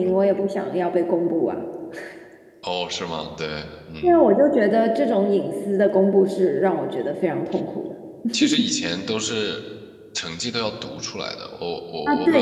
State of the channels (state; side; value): identical; both; correlation 1.00